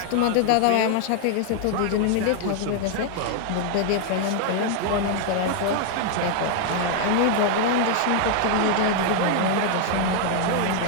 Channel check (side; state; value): both; different; correlation 0.00